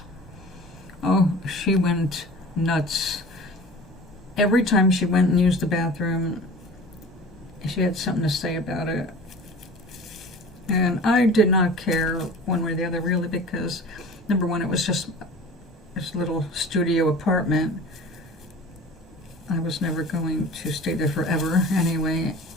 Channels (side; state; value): both; normal; correlation 0.40